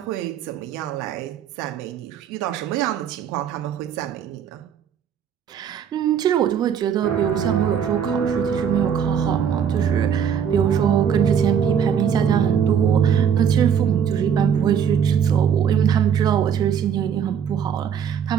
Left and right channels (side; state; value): left; quieter; 8.0 dB